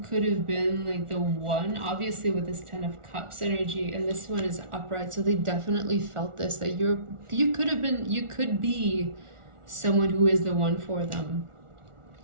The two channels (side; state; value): left; late; 1.4 ms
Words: could have been like the one, obviously with this Ten of Cups energy, and this one is upright, so they definitely felt this, that you could be someone who is the one for them.